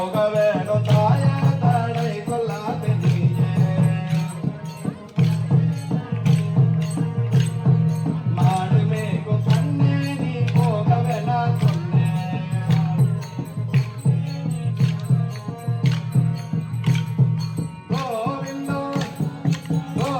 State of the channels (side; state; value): both; identical; correlation 1.00